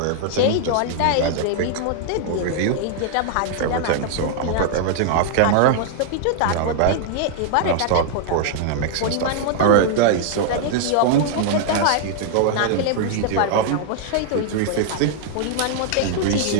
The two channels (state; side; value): different; both; correlation 0.00